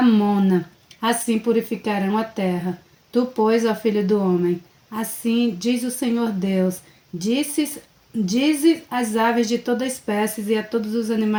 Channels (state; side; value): identical; both; correlation 1.00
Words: Assim purificarão a terra. Tu, pois, ó filho do homem, assim diz o Senhor Deus, dize às aves de toda espécie e a todos os